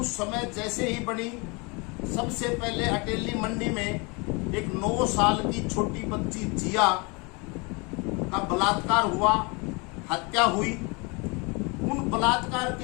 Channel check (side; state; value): right; quieter; 29.3 dB